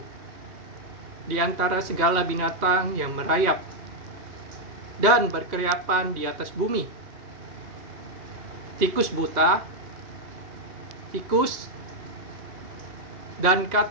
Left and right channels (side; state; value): left; late; 2.8 ms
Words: di antara segala binatang yang merayap dan berkeriapan di atas bumi: tikus buta, tikus, dan